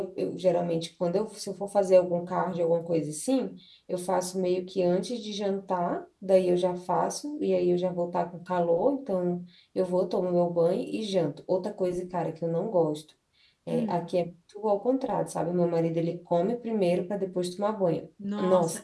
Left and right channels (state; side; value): identical; both; correlation 1.00